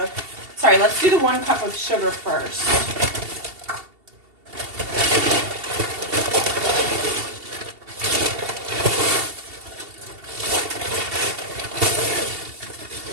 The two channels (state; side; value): late; left; 2.7 ms